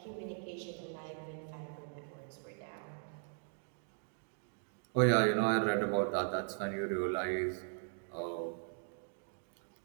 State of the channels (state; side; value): silent; left; digital silence